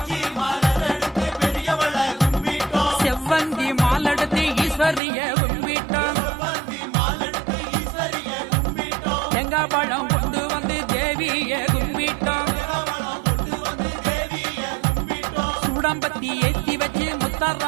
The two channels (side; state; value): left; drops out; at 5.0 s